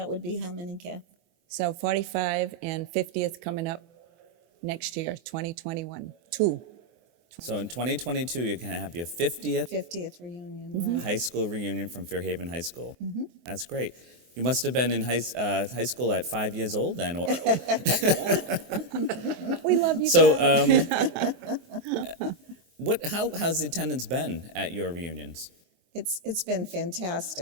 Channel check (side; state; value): left; late; 24 ms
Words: would be how many, Kath? So 45 and 50th coming up next year, 2021. Two. So in 2022, you're going to have your 50th 50th reunion. Mm-hmm. Right? high school reunion from Fairhaven High School. Mm-hmm. That's great. You must have been in high school at 5 years old then. Or We love you. So how's the attendance been at your reunions? It's been